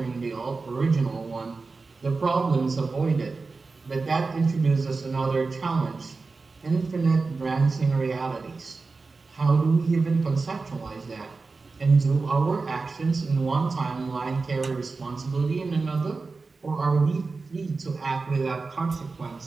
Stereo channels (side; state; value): left; quieter; 4.1 dB